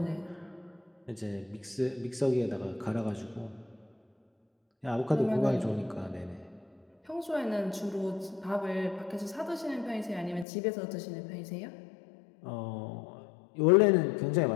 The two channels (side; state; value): right; drops out; at 10.5 s